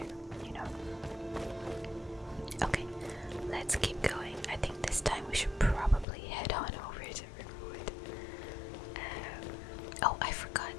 you know. Okay, let's keep going. I think this time we should probably head on over to Riverwood. Oh, I forgot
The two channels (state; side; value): drops out; right; at 6.1 s